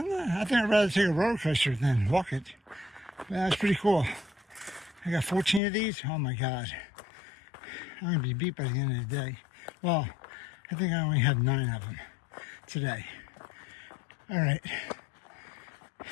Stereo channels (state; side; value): drops out; right; at 5.6 s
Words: I'd rather take a roller coaster than walk it. But that was pretty cool. I got 14 of these. Oh my God. I'm going to be beat by the end of the day. Well, I think I only had 9 of them today. All right.